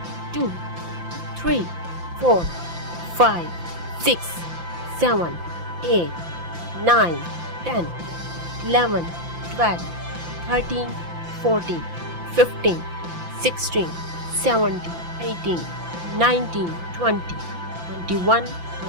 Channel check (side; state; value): left; late; 5.9 ms